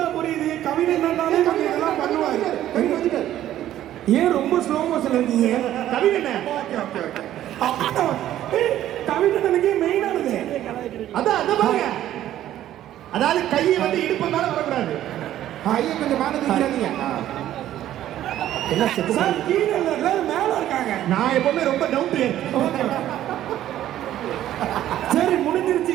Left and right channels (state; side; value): quieter; left; 12.6 dB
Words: புரியுது. கவின் என்னன்னாலே கொஞ்சம் இதெல்லாம் பண்ணுவாரு. ஏன் ரொம்ப ஸ்லோ மோஷன்ல இருக்கீங்க? கவின் என்ன? கவின் என்னக்கே மெயினானது. அதான் அத பாருங்க. அதாவது கையை வந்து இடுப்பு மேல வரக்கூடாது. ஐயா கொஞ்சம் மேல தூக்கிறாதீங்க. என்ன செத்து சார் கீழே இல்ல, எல்லாரும் மேல இருக்காங்க. நான் எப்பவுமே ரொம்ப டவுன் டு எர்த். சரி முடிஞ்சிருச்சு.